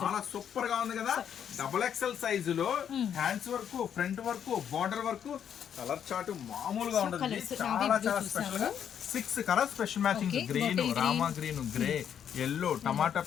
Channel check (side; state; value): right; quieter; 8.8 dB